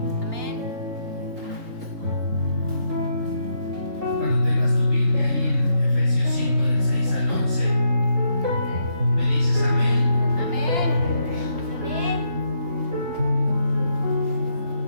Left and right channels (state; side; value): late; left; 3.3 ms